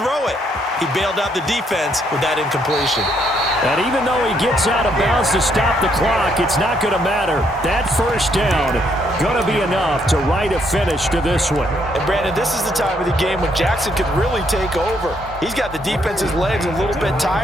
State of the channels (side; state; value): both; normal; correlation 0.72